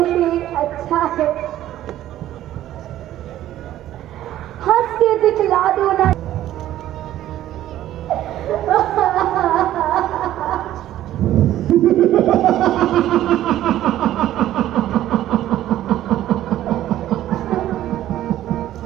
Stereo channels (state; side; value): quieter; left; 13.2 dB